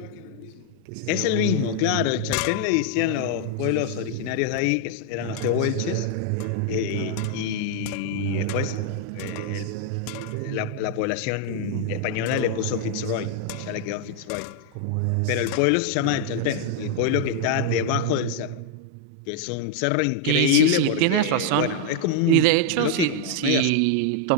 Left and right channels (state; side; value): different; both; correlation 0.00